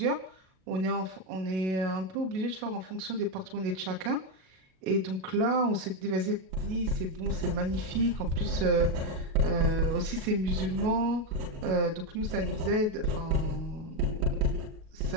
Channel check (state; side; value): late; left; 37 ms